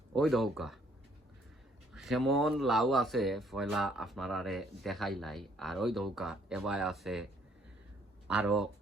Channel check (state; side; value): normal; both; correlation 0.65